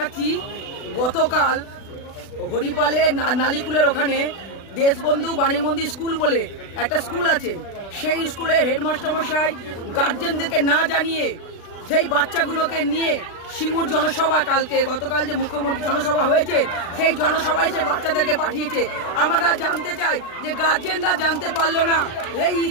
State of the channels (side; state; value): right; late; 36 ms